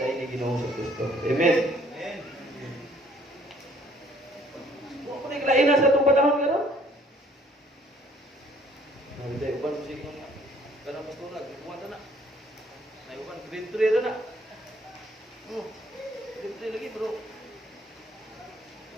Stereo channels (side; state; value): both; normal; correlation 0.60